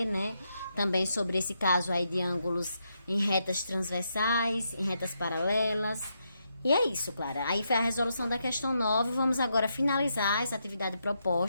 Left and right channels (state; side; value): inverted; both; correlation -0.81